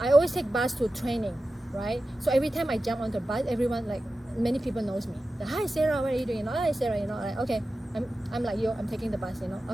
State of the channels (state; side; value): normal; both; correlation 0.94